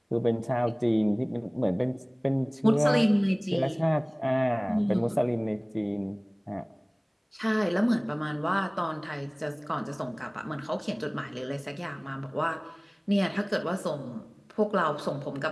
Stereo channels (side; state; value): both; identical; correlation 1.00